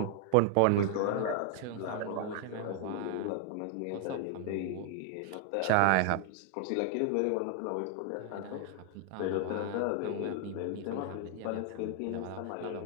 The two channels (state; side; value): different; both; correlation 0.00